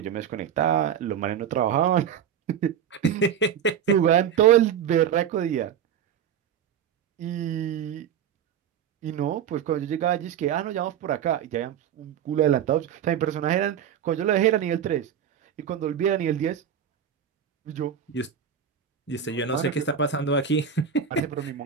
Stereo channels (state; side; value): quieter; left; 8.7 dB